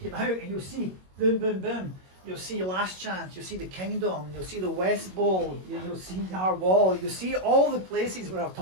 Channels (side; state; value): left; late; 21 ms